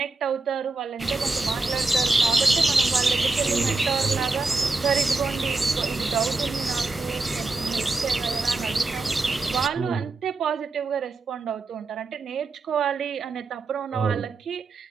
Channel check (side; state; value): left; quieter; 3.5 dB